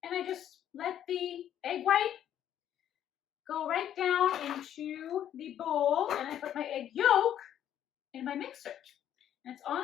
And I just let the egg white go right down into the bowl, and I put my egg yolk in my mixer. And it's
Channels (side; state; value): right; quieter; 10.6 dB